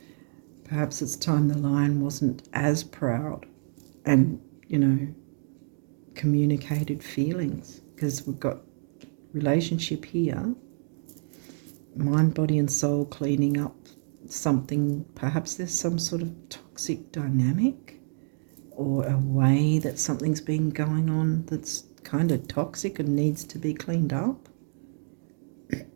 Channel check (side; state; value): left; silent; 59 dB below the other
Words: Perhaps it's time the lion wasn't as proud and, you know, communicated feelings, because we've got relationship here, mind, body and soul, cleaning up something. Perhaps there's some sort of toxic dynamic or a way that something's been going on that's kind of toxic and needs to be cleaned up